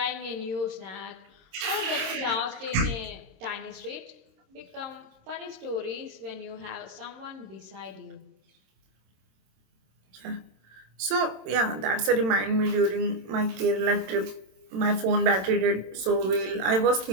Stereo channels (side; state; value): left; late; 27 ms